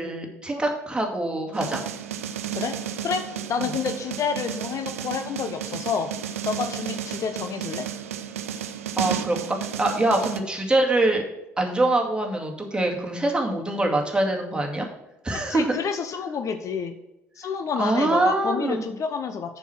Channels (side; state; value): both; normal; correlation 0.65